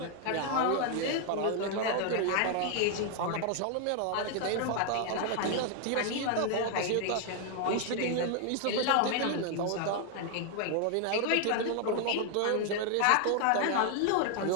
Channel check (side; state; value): both; different; correlation 0.00